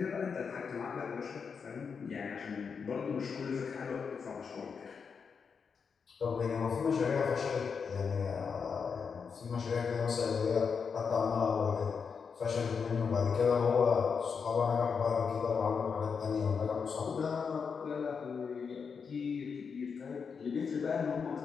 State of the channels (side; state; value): right; quieter; 5.9 dB